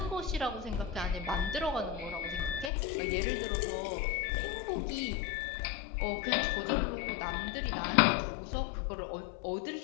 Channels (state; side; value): drops out; right; at 2.7 s